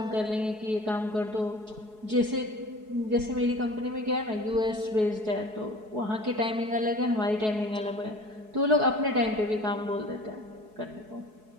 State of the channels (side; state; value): left; late; 4.7 ms